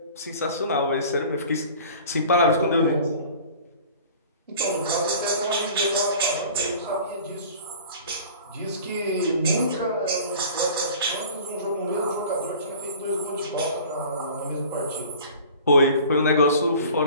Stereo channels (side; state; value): both; inverted; correlation -0.44